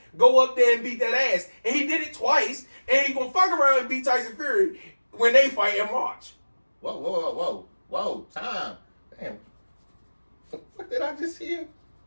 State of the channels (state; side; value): inverted; both; correlation -1.00